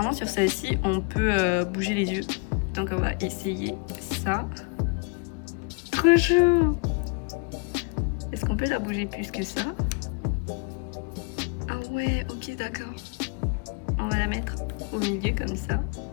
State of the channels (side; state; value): right; quieter; 33.0 dB